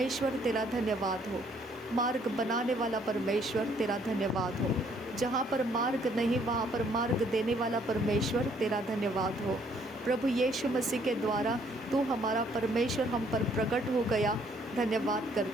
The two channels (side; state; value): both; normal; correlation 0.65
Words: तेरा धन्यवाद हो, मार्ग बनाने वाला परमेश्वर तेरा धन्यवाद हो, जहाँ पर मार्ग नहीं वहाँ पर मार्ग देने वाला परमेश्वर तेरा धन्यवाद हो। प्रभु यीशु मसीह के द्वारा तू हमारा परमेश्वर हम पर प्रकट हो गया, धन्यवाद